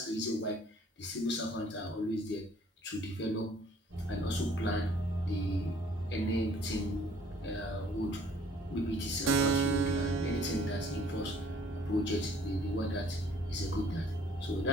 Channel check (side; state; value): both; normal; correlation 0.58